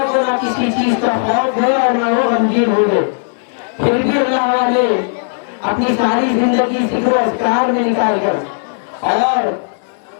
کو نہ کسی چیز کا خوف ہے اور نہ وہ غمگین ہو گئے۔ پھر بھی اللہ والے اپنی ساری زندگی ذکر و اذکار میں نکال کر اور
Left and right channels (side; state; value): right; silent; digital silence